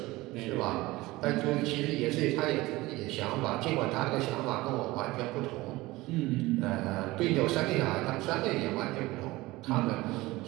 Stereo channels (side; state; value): left; quieter; 19.7 dB